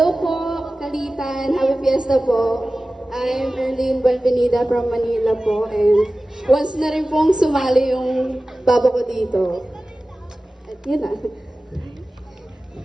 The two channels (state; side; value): normal; both; correlation 0.96